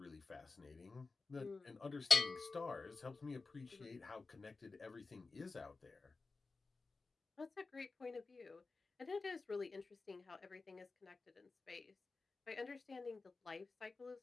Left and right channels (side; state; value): right; quieter; 3.9 dB